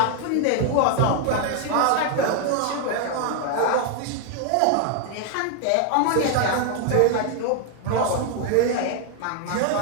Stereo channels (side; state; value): both; different; correlation 0.00